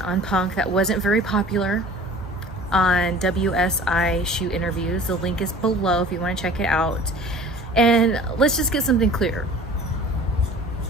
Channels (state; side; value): normal; both; correlation 0.45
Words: on Punk that wasn't very popular on WSI Shoot Interviews. The link is below if you want to check it out. And let's just get something clear.